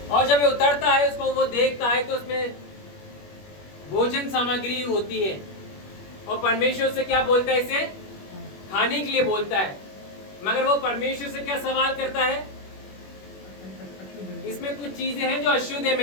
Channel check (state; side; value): late; right; 21 ms